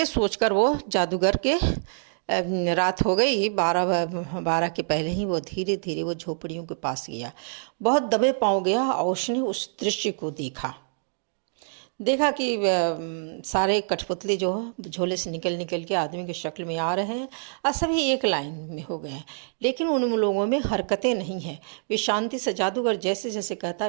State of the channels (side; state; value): left; silent; digital silence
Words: सोचकर वो जादूगर के रात हो गई, 12 के पहले ही वो धीरे धीरे वो झोपड़ियों के पास गया। बहुत दबे पाँव गया और उसने उस दृश्य को देखा कि सारे कठपुतली जो झोले से निकल के आदमी की शक्ल में आ रहे हैं और सभी एक लाइन में हो गए हैं, लेकिन उन लोगों में हरकतें नहीं हैं। वे शांति से, जादूगर जैसे जैसे कहता